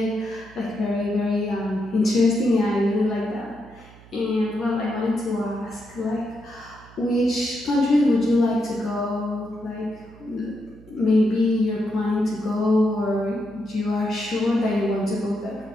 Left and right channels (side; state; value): right; noise; hum, 22 dB below the sound